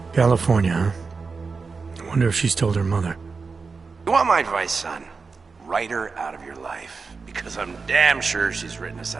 California, huh? I wonder if she's told her mother. You want my advice, son? Write her out of your life. Because I'm damn sure she's written us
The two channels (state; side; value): quieter; left; 4.7 dB